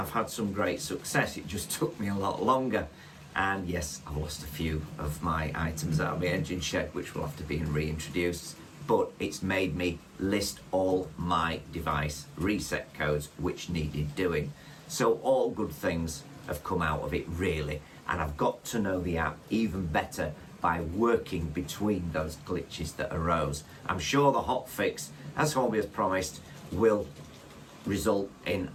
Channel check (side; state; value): both; identical; correlation 1.00